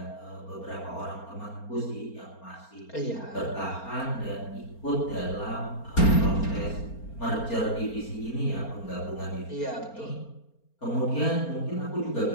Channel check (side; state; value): right; late; 4.4 ms